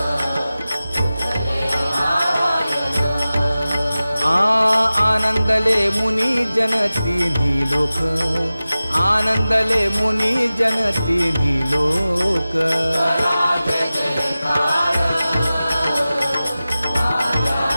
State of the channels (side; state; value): both; inverted; correlation -0.96